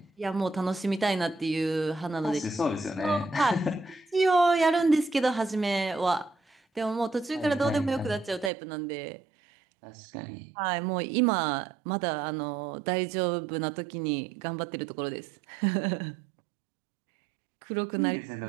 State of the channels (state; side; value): drops out; left; at 8.5 s